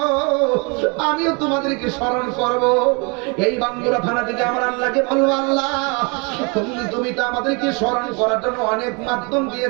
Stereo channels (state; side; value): quieter; left; 32.0 dB